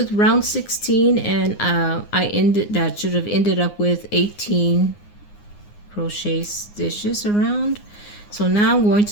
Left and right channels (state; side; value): late; right; 9.7 ms